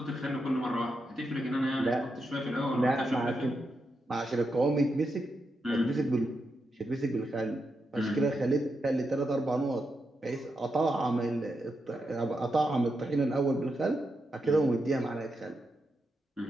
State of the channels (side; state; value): both; normal; correlation 0.85